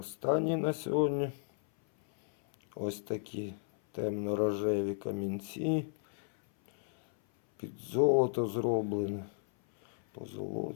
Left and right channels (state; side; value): silent; right; 55 dB below the other